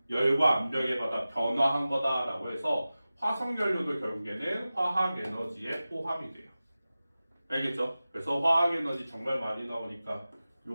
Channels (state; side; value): inverted; both; correlation -0.96